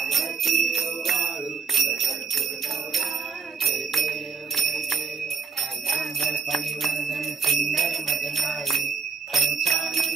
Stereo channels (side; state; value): left; quieter; 5.5 dB